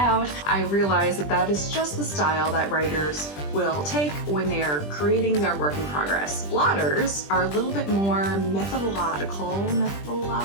I realized that that is just the style that writers will take when they are creating their work in progress. Plotters are a little bit more methodological,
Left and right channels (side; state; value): right; late; 20 ms